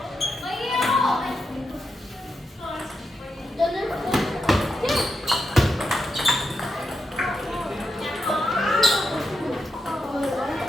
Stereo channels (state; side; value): normal; both; correlation 0.86